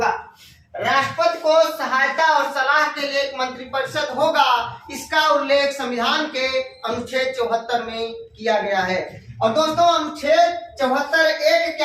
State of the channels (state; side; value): identical; both; correlation 1.00